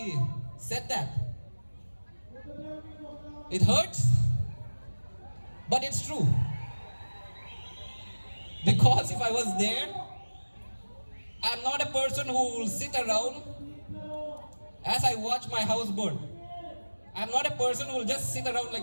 said that. It hurts, but it's true. Because if I was there, I'm not a person who will sit around as I watch my house burn. I'm not a person who will just sit around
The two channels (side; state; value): both; inverted; correlation -1.00